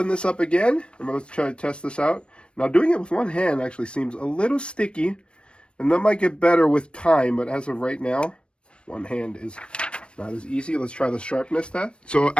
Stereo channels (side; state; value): right; late; 0.057 ms